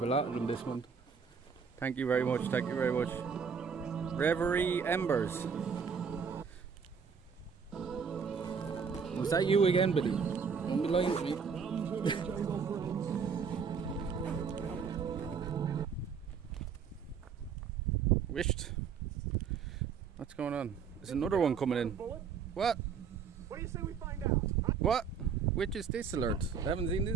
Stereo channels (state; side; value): quieter; left; 6.3 dB